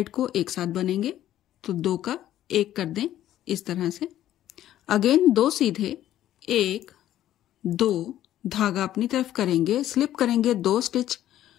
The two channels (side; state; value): right; quieter; 12.6 dB